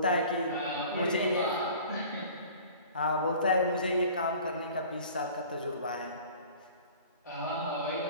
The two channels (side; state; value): both; inverted; correlation -0.45